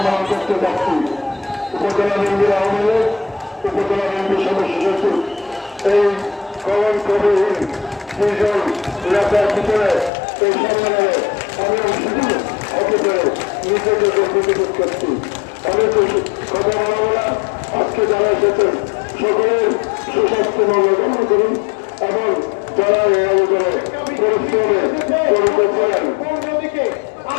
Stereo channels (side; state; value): right; drops out; at 10.1 s